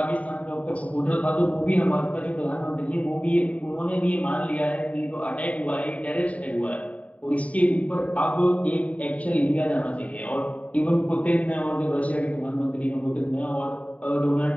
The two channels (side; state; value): right; late; 0.067 ms